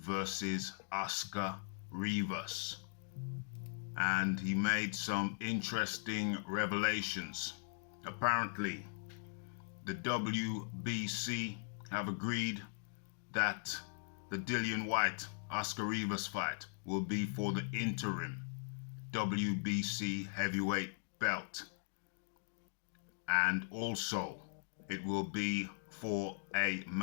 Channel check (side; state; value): right; silent; digital silence